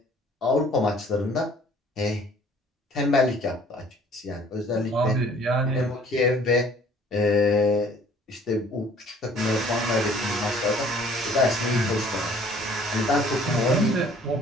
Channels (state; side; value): normal; both; correlation 0.55